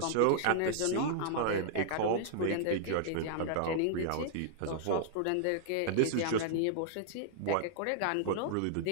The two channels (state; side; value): different; both; correlation -0.01